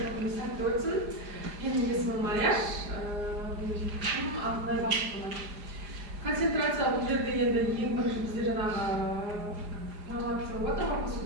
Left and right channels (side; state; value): left; late; 4.9 ms